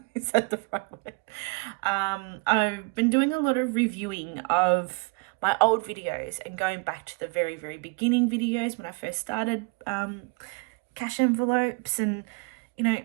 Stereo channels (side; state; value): left; quieter; 30.6 dB